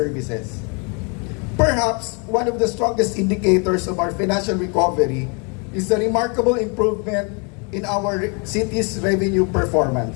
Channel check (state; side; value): quieter; right; 35.0 dB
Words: Perhaps one of the strongest indicators of our financial recovery is the remarkable improvement in our city's revenue